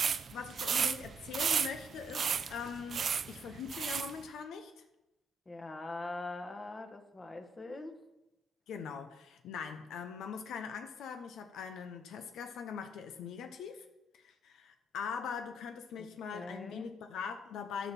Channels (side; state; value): both; normal; correlation 0.72